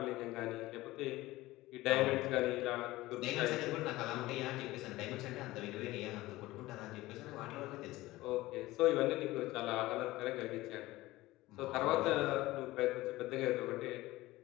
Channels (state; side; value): quieter; right; 18.3 dB